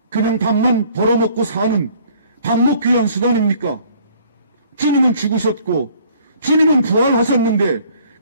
그냥 밥만 벌어먹고 사는 밥 먹기 위한 수단입니까? 주님은 죽으셨고 주님은 부활하셨는데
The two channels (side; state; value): both; inverted; correlation -0.56